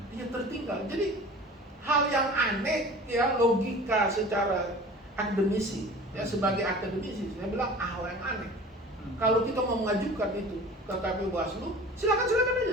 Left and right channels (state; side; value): normal; both; correlation 0.41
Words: Iya, tertinggal. Jadi hal yang aneh ya, logika secara akademisi ya, sebagai akademisi saya bilang hal yang aneh. Kalau kita mau mengajukan itu ke KPU Bawaslu, silakan